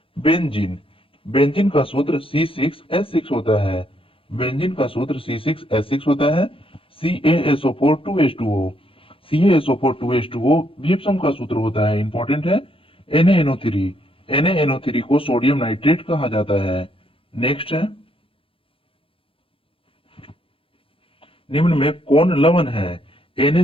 बेंजीन बेंजीन का सूत्र C6H6 होता है। बेंजीन का सूत्र C6H6 होता है। CaSO4 2H2O, CaSO4 2H2O gypsum का सूत्र होता है, इंपॉर्टेंट है। NaNO3, NaNO3 को सोडियम नाइट्रेट कहा जाता है। नेक्स्ट है, निम्न में कौन लवण है?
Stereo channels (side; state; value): right; late; 0.26 ms